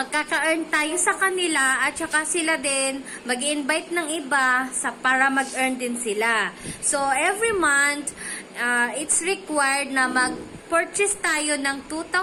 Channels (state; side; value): identical; both; correlation 1.00